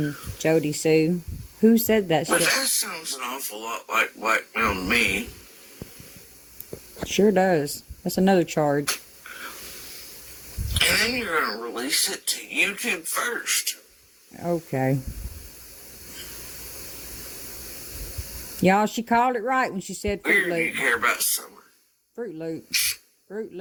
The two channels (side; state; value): both; identical; correlation 1.00